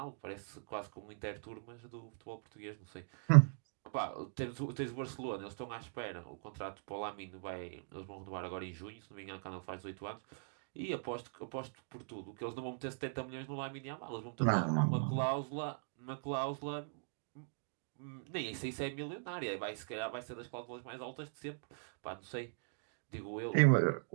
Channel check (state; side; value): silent; left; digital silence